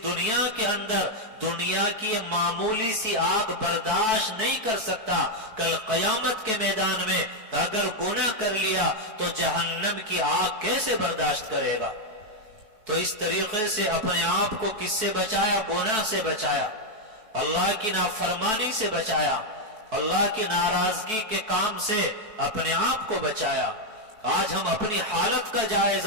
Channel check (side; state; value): left; late; 4.6 ms